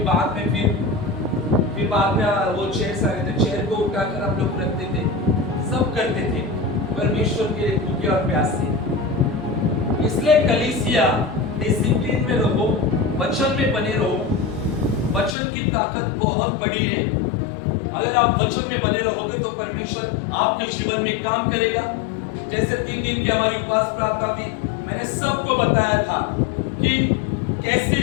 बाद में फिर बाद में वो चेयर आ गए थे, चेयर को उठाकर हम लोग रखते थे, सब करते थे परमेश्वर के भूखे और प्यासे। इसलिए कलीसिया डिसिप्लिन में रहो, वचन में बने रहो। वचन की ताकत बहुत बड़ी है। अगर आप वचन में बने रहोगे तो परमेश्वर आपके जीवन में काम करेगा। जैसे 3 दिन की हमारी उपवास प्रार्थना थी, मैंने सबको बताया था कि कैसी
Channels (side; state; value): right; drops out; at 15.4 s